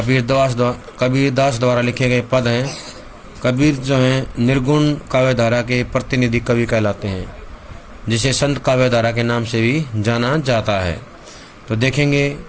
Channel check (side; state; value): both; identical; correlation 1.00